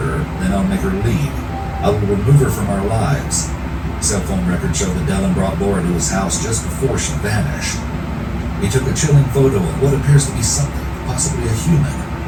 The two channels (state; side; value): identical; both; correlation 1.00